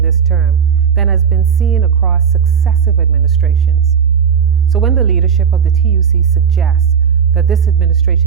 this term than has been seen across successive administrations. So when the leadership of the TUC suggests that this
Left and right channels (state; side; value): quieter; left; 7.1 dB